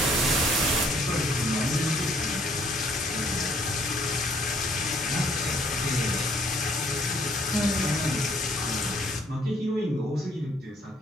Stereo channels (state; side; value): normal; both; correlation 0.63